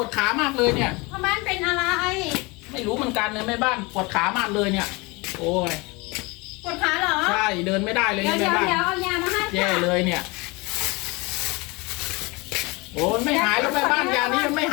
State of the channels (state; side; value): quieter; right; 26.0 dB